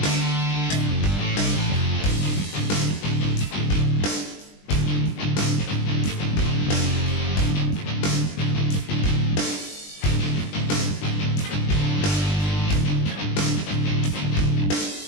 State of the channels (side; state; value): right; late; 20 ms